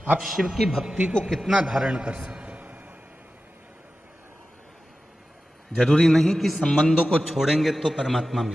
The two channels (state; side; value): normal; both; correlation 0.94